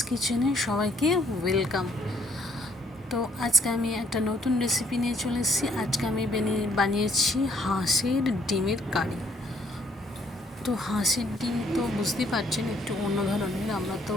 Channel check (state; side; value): normal; both; correlation 0.66